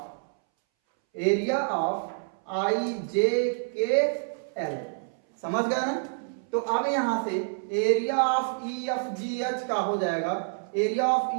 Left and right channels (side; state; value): left; silent; 60 dB below the other